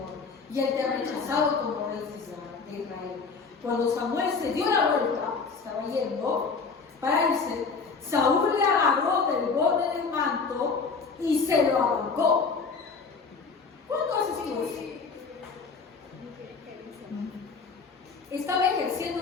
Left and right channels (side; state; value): right; quieter; 4.9 dB